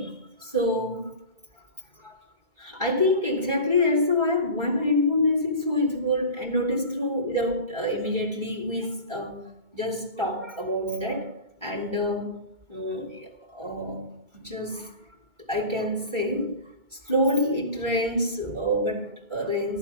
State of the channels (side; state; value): left; late; 2.2 ms